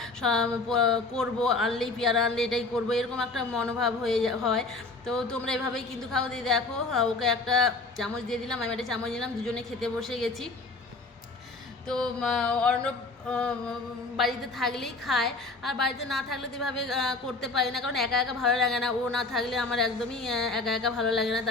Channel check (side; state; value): right; quieter; 3.5 dB